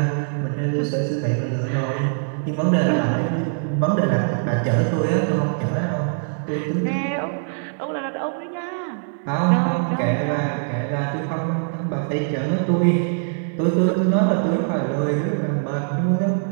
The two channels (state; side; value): silent; left; digital silence